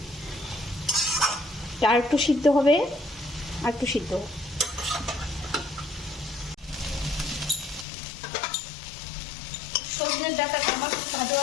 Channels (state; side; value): drops out; right; at 7.9 s